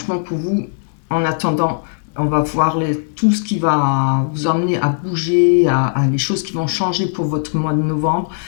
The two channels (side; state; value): right; silent; digital silence